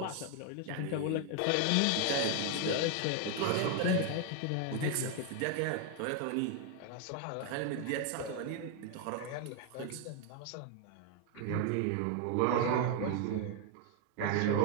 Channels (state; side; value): different; both; correlation 0.01